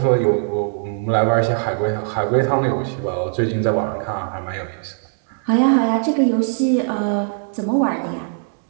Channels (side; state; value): left; silent; digital silence